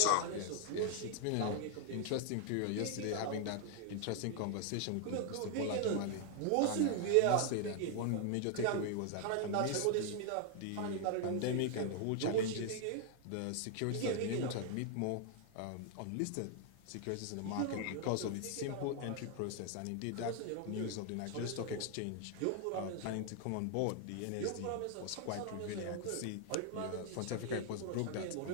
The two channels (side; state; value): both; different; correlation 0.00